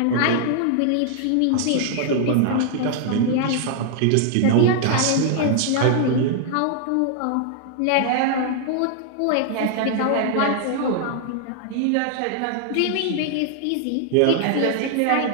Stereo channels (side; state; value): both; different; correlation 0.00